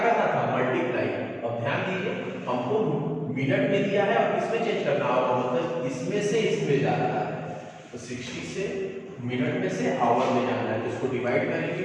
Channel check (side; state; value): both; identical; correlation 1.00